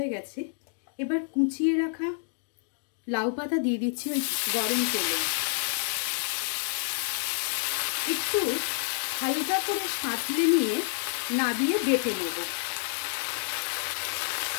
गेছে, এবার কুচিয়ে রাখা লাউ পাতা দিয়ে দিচ্ছি ওই গরম তেলে। একটু হালকা করে সাঁতলে নিয়ে নাবিয়ে বেটে নেব।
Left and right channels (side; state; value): right; silent; digital silence